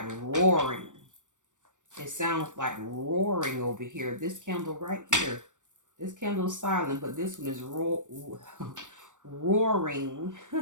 roaring. It sounds like roaring over here. This candle right here. This candle is silent, but this one is roaring.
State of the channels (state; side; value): late; left; 0.86 ms